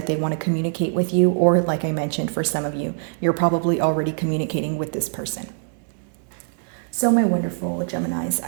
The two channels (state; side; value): silent; left; 63 dB below the other